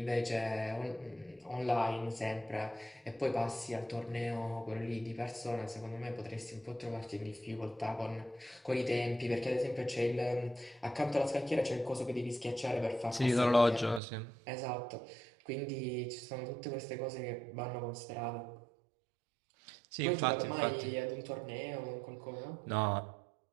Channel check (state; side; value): drops out; left; at 14.0 s